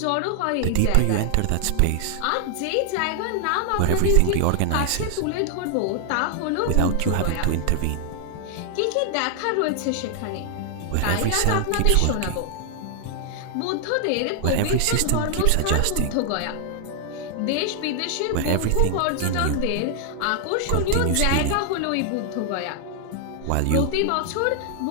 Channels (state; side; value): different; both; correlation 0.00